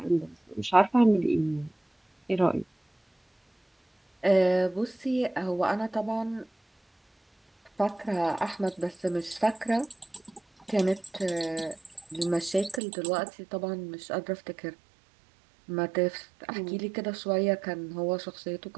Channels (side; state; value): left; drops out; at 12.8 s